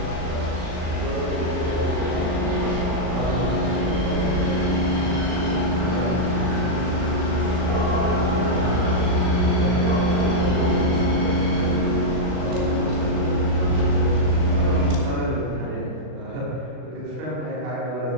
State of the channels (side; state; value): left; late; 39 ms